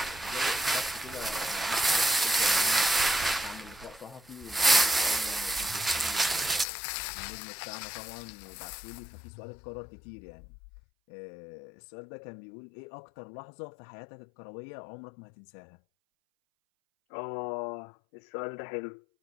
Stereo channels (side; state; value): right; drops out; at 6.7 s